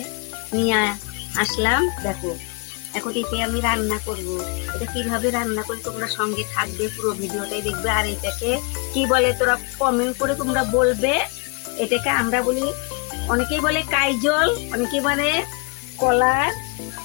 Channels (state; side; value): quieter; right; 32.1 dB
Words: নিয়ে আসলাম। দেখো এখন একে আমি রান্না করব। এটা কিভাবে রান্না করি তোমরা সঙ্গে থাকবে, পুরো ভিডিওটাই দেখবে। আর এটাকে কি বলে তোরা কমেন্ট করে তোমরা বলবে। এটাকে আমরা বলি, অনেকেই বলে কাইজল, অনেকেই বলে কলার